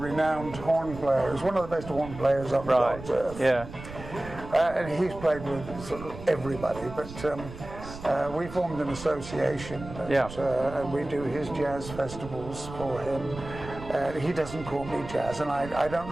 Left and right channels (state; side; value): noise; right; rumble, 13 dB below the sound